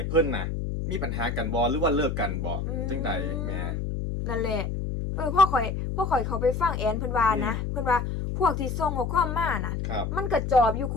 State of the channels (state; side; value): noise; left; hum, 3 dB below the sound